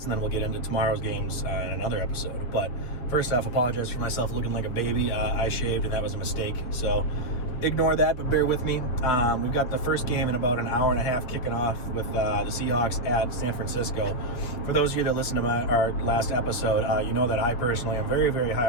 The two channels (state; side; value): late; right; 8.2 ms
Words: and then we'll get into tomorrow's games in another episode. But first off, apologize for myself looking like a baby. I shaved, and that was a mistake, so ignore that, but bear with me. We've got the first game in about an hour and a half kicking off with the Seahawks at San Francisco. For those of you that listened to our last episode, you know that I personally am very, very high